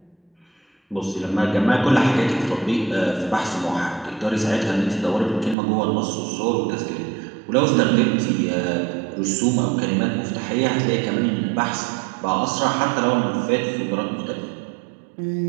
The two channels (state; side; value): drops out; left; at 5.6 s